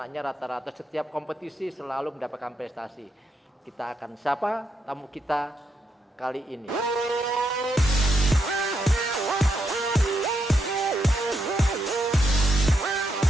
rata-rata setiap kompetisi selalu mendapatkan prestasi. Kita akan sapa tamu kita kali ini.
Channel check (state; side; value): normal; both; correlation 0.80